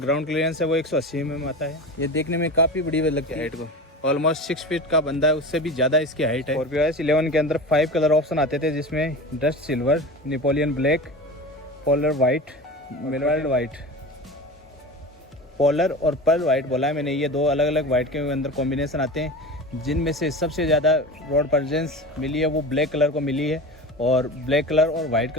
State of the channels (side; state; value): both; normal; correlation 0.31